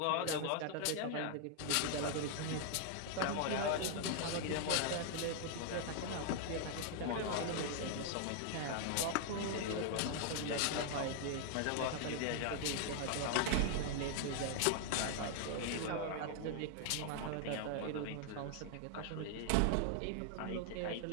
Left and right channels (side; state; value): both; different; correlation 0.00